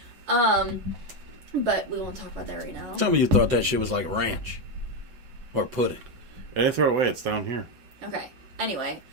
But we won't talk about that right now. Some of you thought that shit was like ranch or pudding. I didn't throw it away. It's down here. Okay. Anyway,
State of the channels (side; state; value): left; late; 7.9 ms